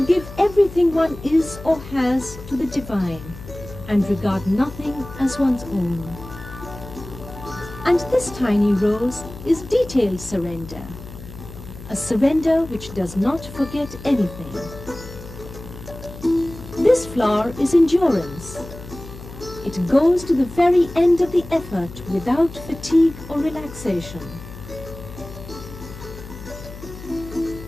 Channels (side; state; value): left; noise; hum, 14 dB below the sound